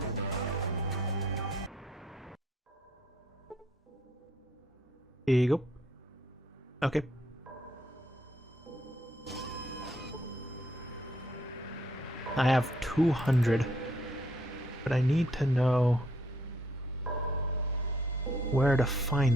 Here you go. Okay. I have 200. But I need to know where to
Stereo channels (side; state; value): both; normal; correlation 0.69